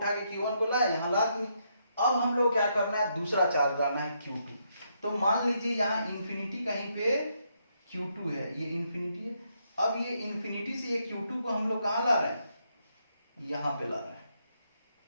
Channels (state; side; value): inverted; both; correlation -0.77